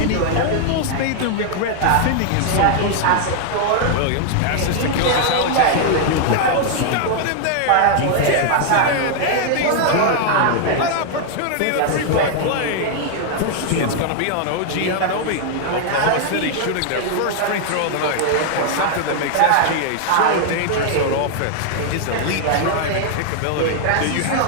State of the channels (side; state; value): both; different; correlation 0.00